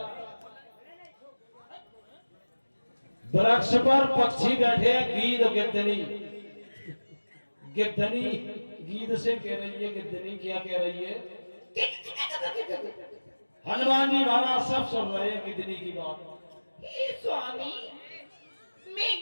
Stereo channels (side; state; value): both; inverted; correlation -1.00